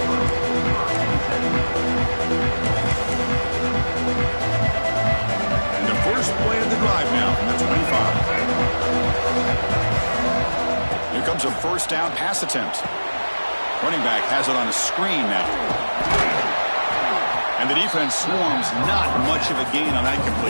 And the first play of the drive now from the 25. Here comes a first down pass attempt. Running back has it on a screen now. And the defense swarms. Not much of a gain on that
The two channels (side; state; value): both; inverted; correlation -1.00